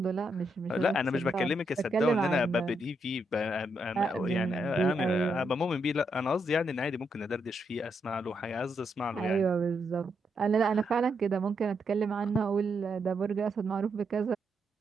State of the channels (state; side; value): normal; both; correlation 0.80